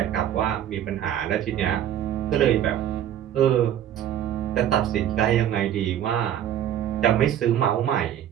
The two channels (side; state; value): left; quieter; 10.8 dB